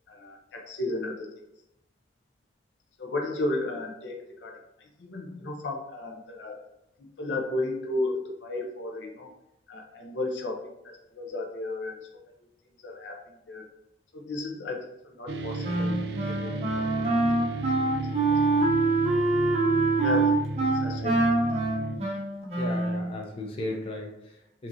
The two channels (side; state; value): both; normal; correlation 0.55